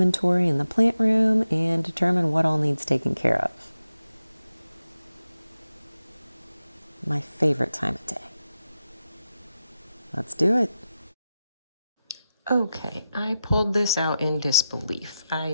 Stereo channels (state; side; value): inverted; both; correlation -0.91